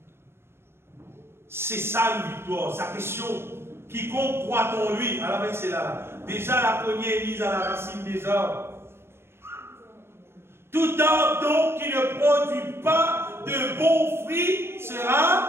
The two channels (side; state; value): left; late; 0.12 ms